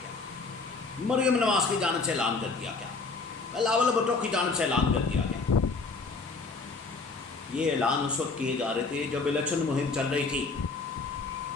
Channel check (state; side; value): quieter; right; 4.0 dB